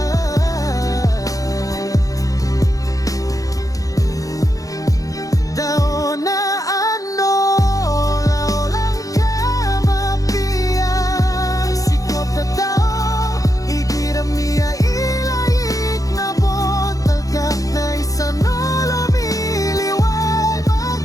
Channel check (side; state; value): right; late; 0.17 ms